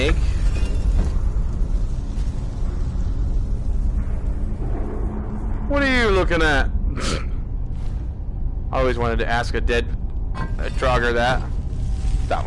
What are you looking at? I always wanted to ask a Draugr that. That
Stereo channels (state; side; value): identical; both; correlation 1.00